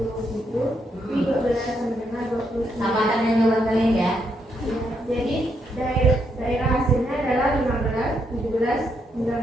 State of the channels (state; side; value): normal; both; correlation 0.78